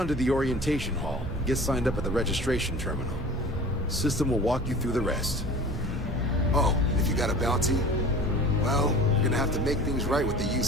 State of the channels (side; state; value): both; normal; correlation 0.40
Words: to the orientation hall. Get signed up at the registration terminal. System will walk you through the rest. Oh, if you got a bounty? Well, you're gonna have to make things right with the